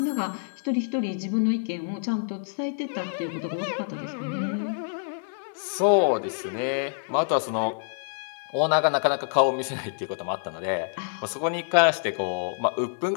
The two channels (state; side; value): silent; right; digital silence